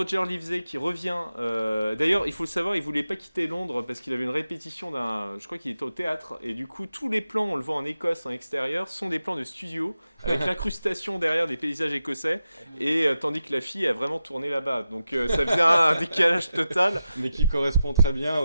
Livesey qui revient. D'ailleurs, il faut le savoir, il voulait pas quitter Londres parce qu'il avait une répétition d'un. Je crois qu'il était au théâtre. Et du coup, tous les plans, on le voit en Écosse, en extérieur, sont des plans de studio avec l'incrustation derrière des paysages écossais. Et tandis que la fille a vraiment tourné là-bas. Donc ça faisait un décalage total. Mais qui correspond très bien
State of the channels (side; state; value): both; inverted; correlation -0.91